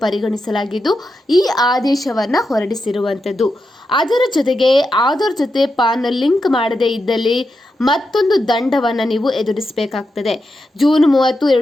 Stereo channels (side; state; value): both; normal; correlation 0.87